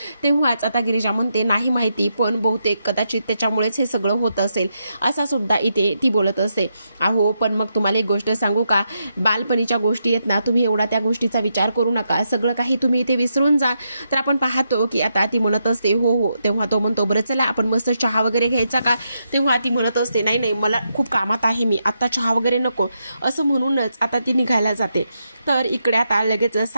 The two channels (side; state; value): both; inverted; correlation -0.82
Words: तेव्हाच आता गिरिजा म्हणते, नाही माहिती पण बहुतेक कदाचित त्याच्यामुळेच हे सगळं होत असेल असा सुद्धा इथे ती बोलत असते. अहो पण मग तुम्हाला एक गोष्ट सांगू का? बालपणीच्या गोष्टी आहेत ना, तुम्ही एवढा त्या गोष्टीचा विचार करू नका, सगळं काही तुम्ही इथे विसरून जा. तर आपण पाहतो की आता ती म्हणत असते हो. तेव्हा तो म्हणतो, बरं चला आपण मस्त चहा वगैरे घ्यायचा का? तेव्हा ती म्हणत असते, नाही मला खूप कामात आहे मी, आता चहा वगैरे नको. असं म्हणूनच आता ती निघायला जाते. तर इकडे आता लगेच